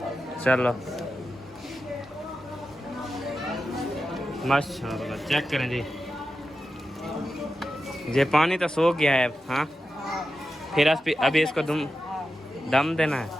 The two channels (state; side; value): normal; both; correlation 0.91